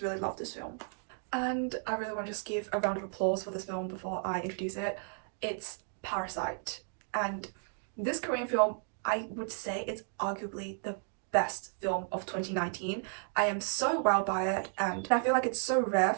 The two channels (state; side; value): silent; left; 55 dB below the other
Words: really love this film. And I really want to just give a round of applause for this film before I introduce it. It's Parasite, and this Korean film, I would say it's arguably the best film of 2019. I am so wowed by it, and I feel like it's so rare